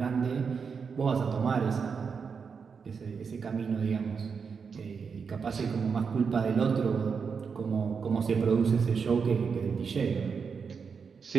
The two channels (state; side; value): quieter; left; 5.8 dB